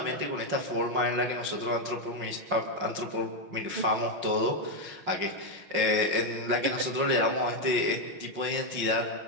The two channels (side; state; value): left; late; 5.6 ms